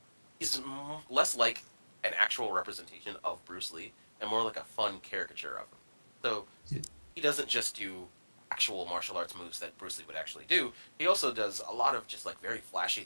is less like an actual representation of Bruce Lee and more like a fun caricature of him. So he doesn't just do actual martial arts moves that Bruce Lee would actually do. He also does a lot of just like very flashy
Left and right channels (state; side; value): inverted; both; correlation -1.00